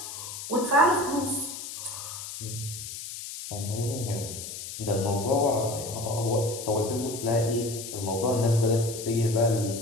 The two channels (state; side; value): noise; left; hiss, 9 dB below the sound